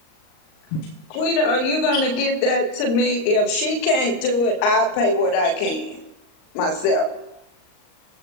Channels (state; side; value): late; right; 38 ms